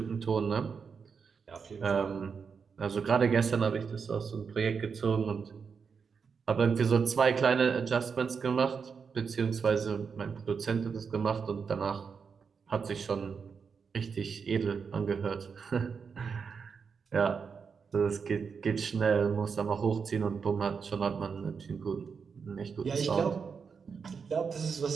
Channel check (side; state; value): left; quieter; 5.9 dB